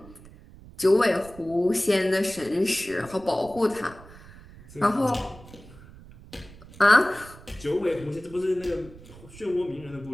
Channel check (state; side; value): noise; right; rumble, 20 dB below the sound